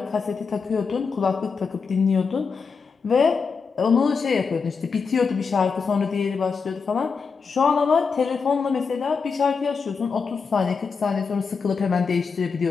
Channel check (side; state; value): right; quieter; 5.3 dB